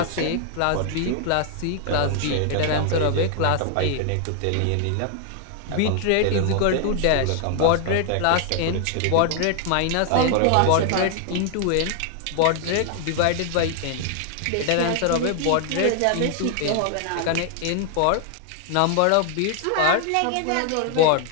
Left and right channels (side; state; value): both; different; correlation 0.00